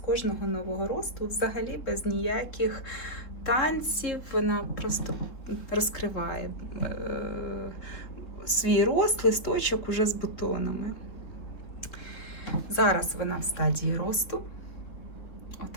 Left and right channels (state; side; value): late; right; 3.8 ms